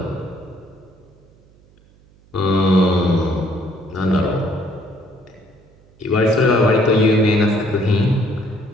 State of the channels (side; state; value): right; noise; hum, 29 dB below the sound